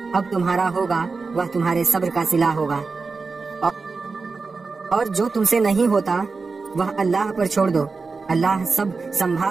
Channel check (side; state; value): left; quieter; 4.3 dB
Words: اب تمہارا ہوگا وہ تمہارے صبر کا صلہ ہوگا۔ اور جو تم سے نہیں ہوتا وہ اللہ پر چھوڑ دو، اللہ سب